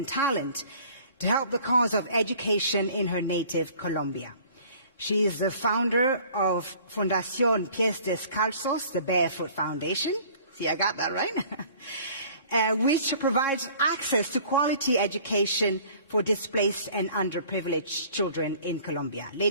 talent to help the cause of education in her native Colombia. She is the founder of Fundación Pies Descalzos, the Barefoot Foundation. See, I got that right? Which provides access to quality education for displaced and underprivileged children in Colombia.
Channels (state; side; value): inverted; both; correlation -0.51